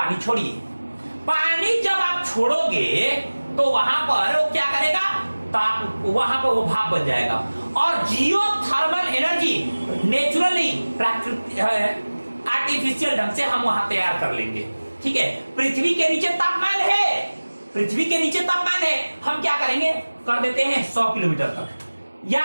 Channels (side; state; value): both; inverted; correlation -1.00